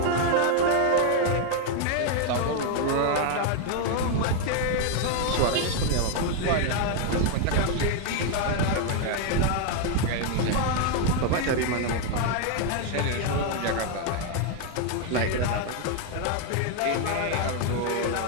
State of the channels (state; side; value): different; both; correlation 0.01